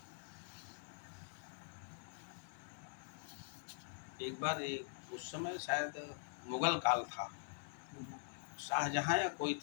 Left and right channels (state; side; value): silent; right; digital silence